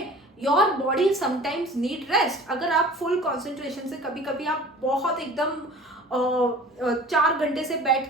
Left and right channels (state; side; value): normal; both; correlation 0.44